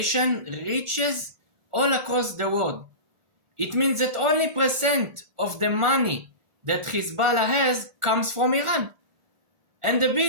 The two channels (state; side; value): late; left; 1.4 ms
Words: reaches all across the world. It means that only percent of the money that Hezbollah has comes from Iran. And the